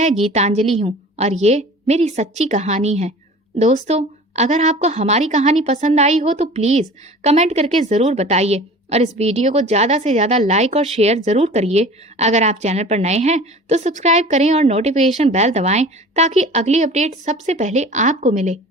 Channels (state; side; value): normal; both; correlation 0.42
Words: गीतांजलि हूँ और ये मेरी सच्ची कहानी है। दोस्तों, अगर आपको हमारी कहानी पसंद आई हो तो प्लीज कमेंट करके जरूर बताइए और इस वीडियो को ज्यादा से ज्यादा लाइक और शेयर जरूर करिए। अगर आप चैनल पर नए हैं तो सब्सक्राइब करें और नोटिफिकेशन बेल दबाएं ताकि अगली अपडेट सबसे पहले आपको मिले।